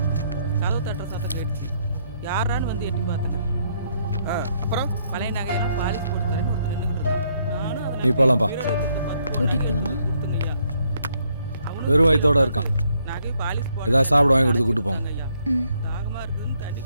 கதவு தட்டுற சத்தம் கேட்டுச்சு. யாரான்னு வந்து எட்டி பார்த்தேங்க. அப்புறம் பழைய நகையெல்லாம் பாலிஷ் போட்டு தரேன்னு ஒருத்தர் நின்றுக்கிட்டு இருந்தான். நானும் அதில் நீ போலாம்ப்பா. கூட்டிட்டு போலாமா? கொடுத்துங்கய்யா. வெறும் வயித்தோட இருக்கான். நகை பாலிஷ் போட்டு ஏதாவது சாப்பிட வாங்கி கொடுத்து கூட்டு போங்க. ஐயா. ம். தாகமா இருக்குதுன்னு தண்ணி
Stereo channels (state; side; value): inverted; both; correlation -0.72